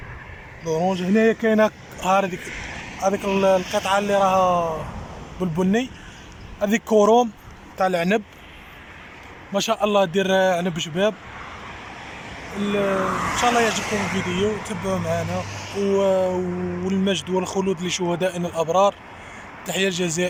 لورونج هنايا كاينة هذيك القطعة اللي راها بالبني، هذيك كوروم تاع العنب، ما شاء الله دير عنب شباب. ان شاء الله يعجبكم الفيديو، تبعوا معنا. والمجد والخلود لشهدائنا الابرار. تحية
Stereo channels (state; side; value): identical; both; correlation 1.00